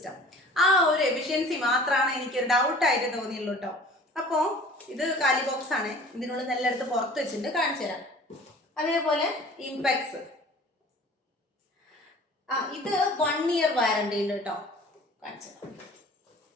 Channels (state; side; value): normal; both; correlation 0.46